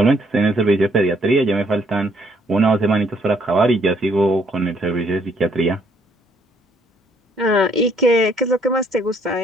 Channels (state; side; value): normal; both; correlation 0.67